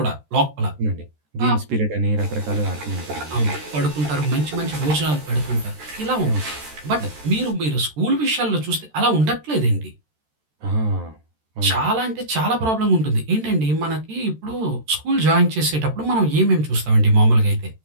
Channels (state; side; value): late; left; 13 ms